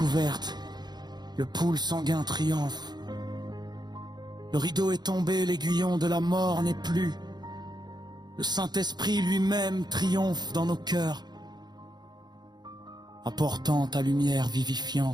le pool sanguin triomphe. Le rideau est tombé, l'aiguillon de la mort n'est plus. Le Saint-Esprit lui-même triomphe dans nos cœurs, apportant ta lumière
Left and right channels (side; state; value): left; late; 0.20 ms